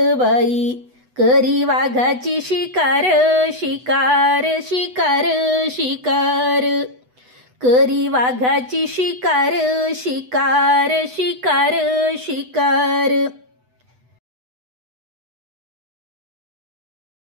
बाई, करी वाघाची शिकार शिकार शिकार शिकार, करी वाघाची शिकार शिकार शिकार शिकार,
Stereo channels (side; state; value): left; late; 8.0 ms